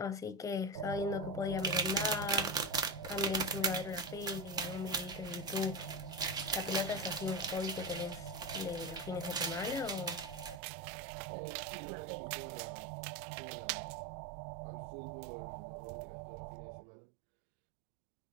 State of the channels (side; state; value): left; drops out; at 10.6 s